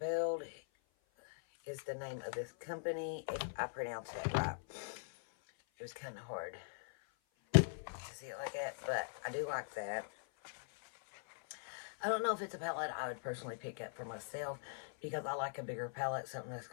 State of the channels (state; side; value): silent; right; 50 dB below the other